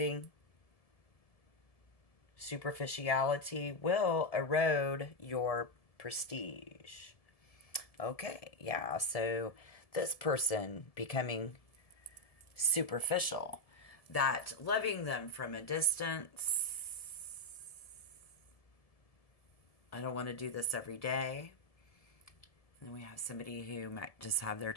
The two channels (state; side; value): late; right; 1.7 ms